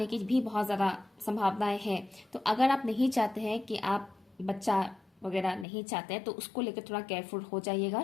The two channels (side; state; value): right; drops out; at 5.7 s